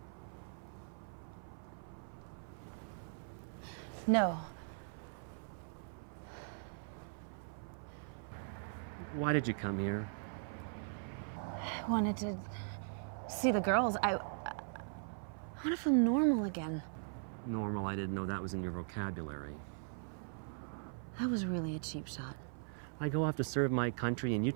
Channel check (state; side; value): silent; left; 51 dB below the other